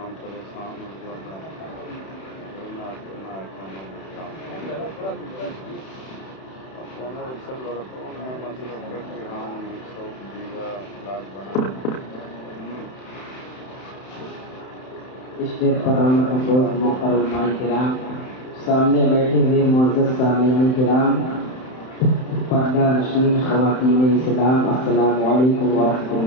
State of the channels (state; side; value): late; right; 31 ms